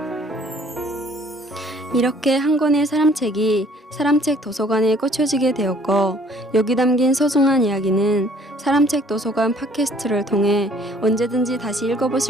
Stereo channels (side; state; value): both; normal; correlation 0.58